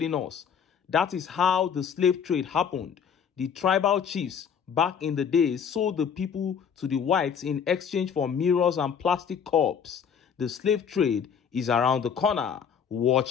us. That is how the slave trade happened. The tribal chiefs back in the days sold the people to the whites in exchange for mirrors and plastic cups. The slave trade is around the corner.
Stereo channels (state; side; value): quieter; right; 7.4 dB